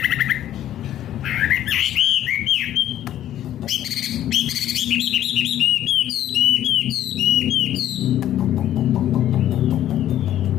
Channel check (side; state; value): right; quieter; 12.1 dB